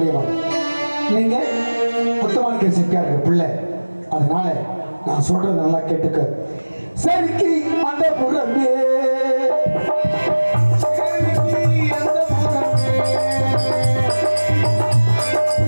நீங்க முத்தமானிக்க செட்டியார் பிள்ளை. அதனால நான் சொல்றது நல்லா கேட்டுக்க. சரிக்கு அந்த புறமே,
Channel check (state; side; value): inverted; both; correlation -1.00